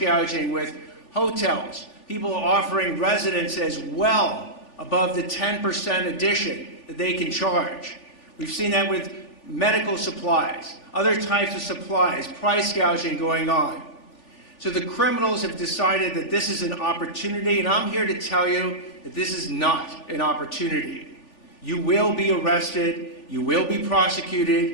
with hotels, people offering residences well above the 10% addition that they can charge. We've seen that with medical supplies, other types of supplies, price gouging going on. So the criminals have decided that this is an opportunity, and I'm here to tell you that this is not an opportunity. You will be arrested, you will be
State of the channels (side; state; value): right; late; 3.4 ms